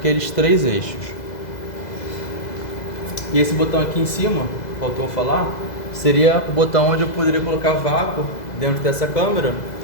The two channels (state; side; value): late; right; 2.0 ms